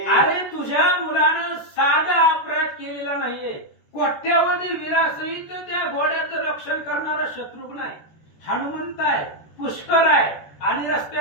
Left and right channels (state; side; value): late; right; 13 ms